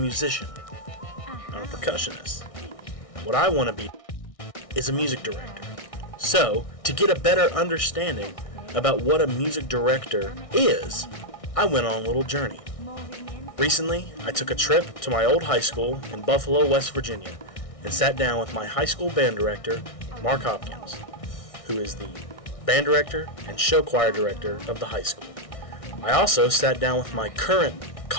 I'm a percussionist. What I want to be is a music director. So, to get a better understanding about what a music director is, I went on a little journey. Recently, I took a trip to my old high school in Buffalo, West Virginia, and sat down with my high school band director, Mark Hopkins, who is the band director and show choir director of the high school. I also sat down with my current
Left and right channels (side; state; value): right; late; 1.6 ms